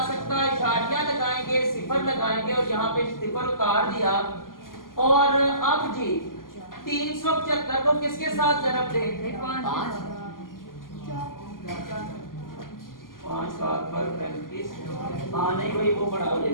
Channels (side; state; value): right; late; 0.91 ms